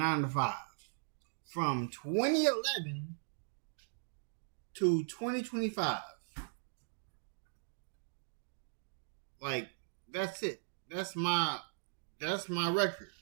from 2011 to 2025. Like, that's it. That's my record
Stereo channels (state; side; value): silent; left; digital silence